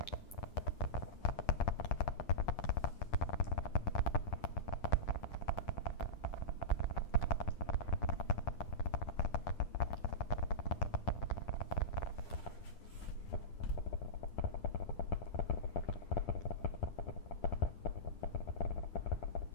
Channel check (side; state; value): right; late; 10 ms